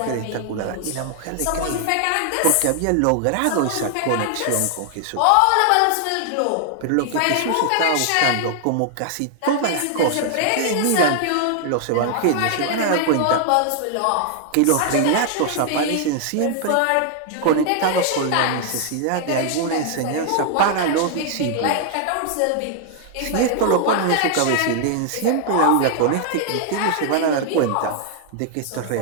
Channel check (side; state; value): both; different; correlation 0.00